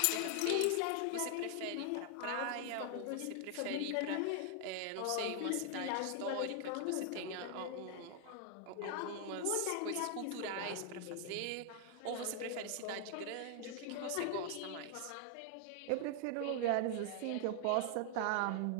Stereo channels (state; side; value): different; both; correlation 0.00